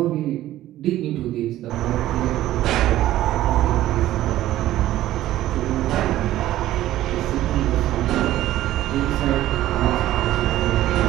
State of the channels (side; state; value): left; quieter; 14.2 dB